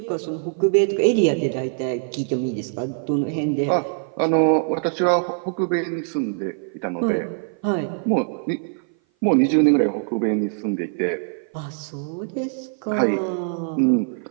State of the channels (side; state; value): left; silent; 57 dB below the other